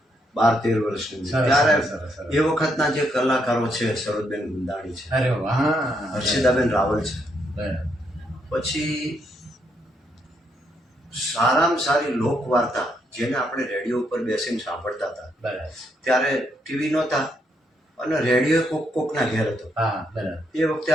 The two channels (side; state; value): both; normal; correlation 0.76